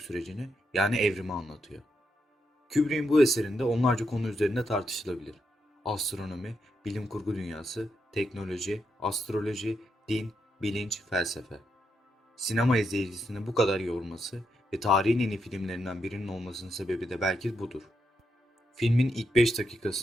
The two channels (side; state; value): both; normal; correlation 0.82